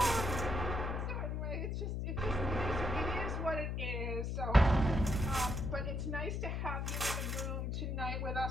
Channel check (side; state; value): left; noise; hum, 1 dB below the sound